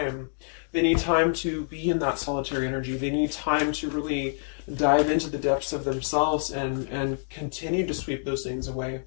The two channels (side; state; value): right; silent; digital silence